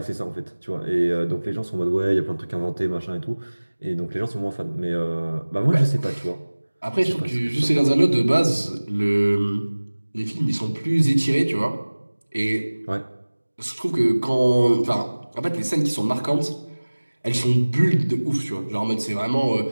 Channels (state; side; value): inverted; both; correlation -1.00